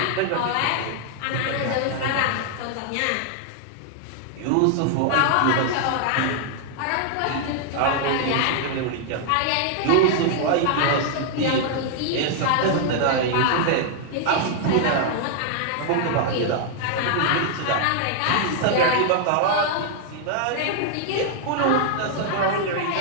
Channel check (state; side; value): different; both; correlation 0.00